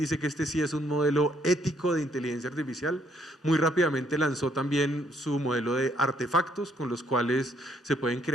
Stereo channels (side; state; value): both; normal; correlation 0.69